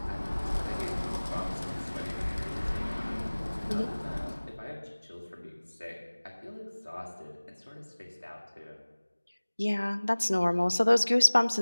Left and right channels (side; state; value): both; inverted; correlation -1.00